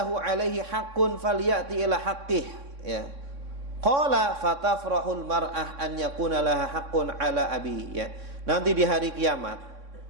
alaihi haqqun falyati ila haqqih, ya. Qala fatafrahul mar'ah an yakuna laha haqqun ala abi, ya. Nanti di hari kiamat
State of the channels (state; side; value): late; left; 3.6 ms